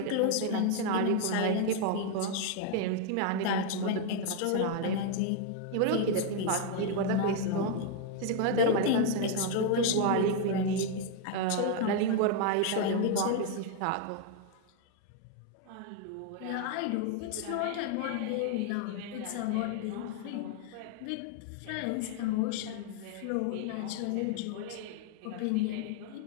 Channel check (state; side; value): different; both; correlation 0.01